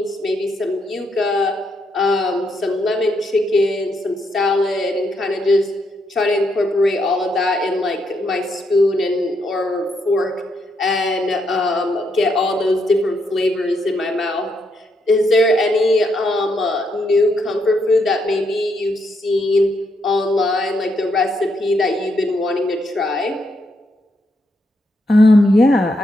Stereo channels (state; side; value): normal; both; correlation 0.78